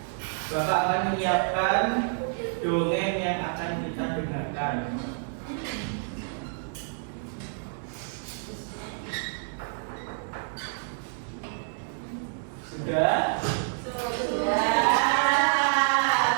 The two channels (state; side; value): silent; left; digital silence